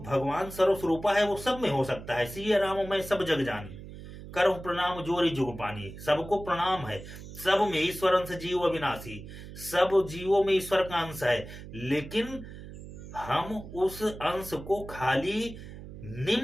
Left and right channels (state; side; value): noise; right; hum, 13 dB below the sound